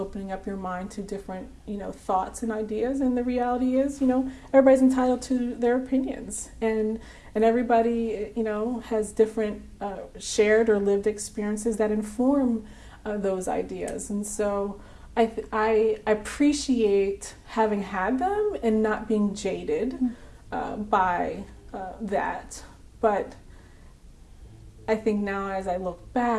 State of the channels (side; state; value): both; identical; correlation 1.00